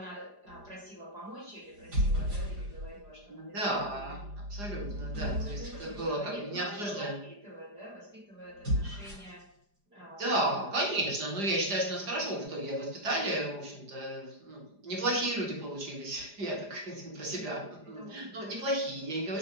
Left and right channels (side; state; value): left; late; 4.9 ms